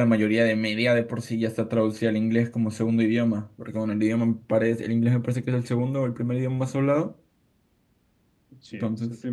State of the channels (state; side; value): identical; both; correlation 1.00